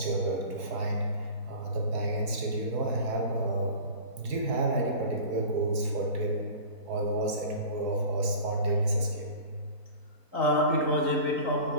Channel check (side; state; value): left; late; 4.7 ms